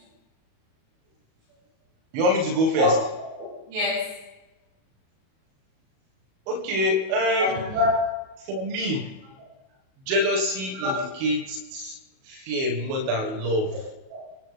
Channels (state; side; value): late; left; 37 ms